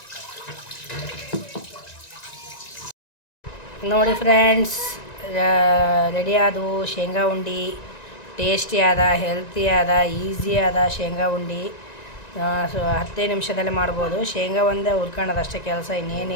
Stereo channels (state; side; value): late; right; 1.9 ms